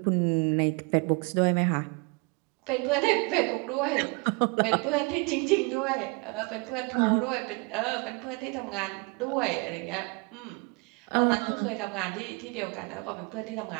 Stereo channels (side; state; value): left; quieter; 29.4 dB